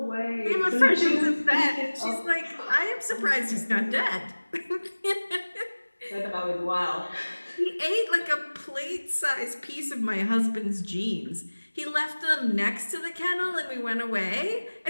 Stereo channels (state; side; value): inverted; both; correlation -1.00